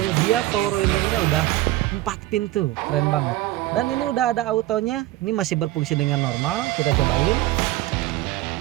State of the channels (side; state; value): left; quieter; 16.3 dB